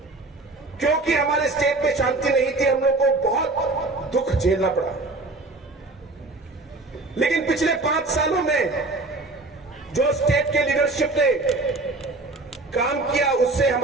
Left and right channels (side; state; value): left; quieter; 3.2 dB